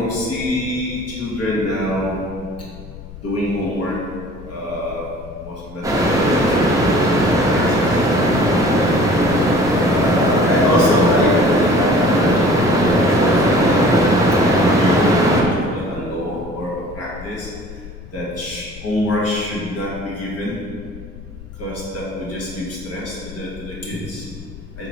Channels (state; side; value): noise; left; rumble, 16 dB below the sound